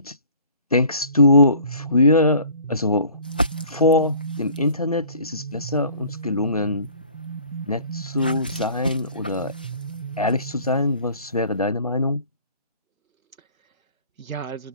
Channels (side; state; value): both; inverted; correlation -0.50